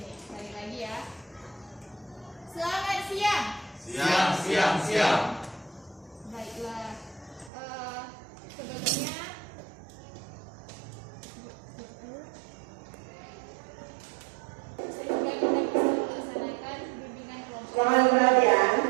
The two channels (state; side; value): drops out; left; at 7.5 s